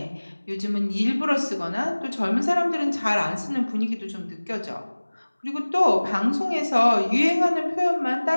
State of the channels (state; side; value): inverted; both; correlation -1.00